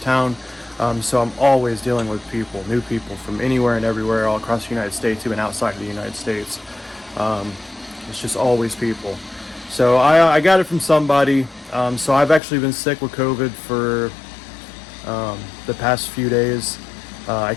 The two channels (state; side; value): drops out; right; at 12.4 s